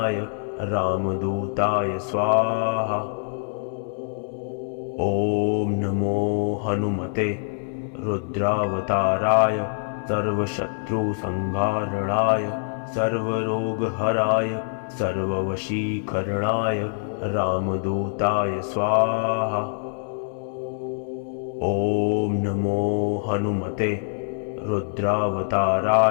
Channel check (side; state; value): right; silent; 62 dB below the other